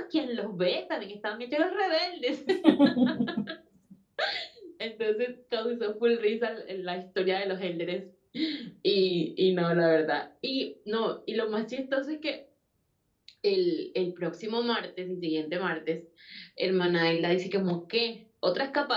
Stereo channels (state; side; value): identical; both; correlation 1.00